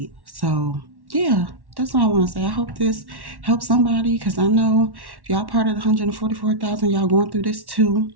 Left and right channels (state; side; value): late; left; 1.1 ms